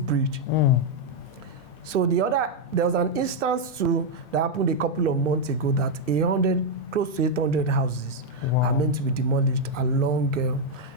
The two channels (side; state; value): right; late; 2.6 ms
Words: bridge. So there was an instance too that happened a couple of months ago that close to 800 houses are meant to be demolished along